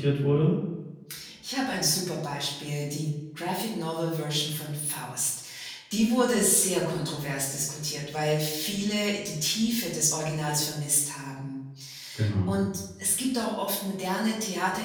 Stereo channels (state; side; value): identical; both; correlation 1.00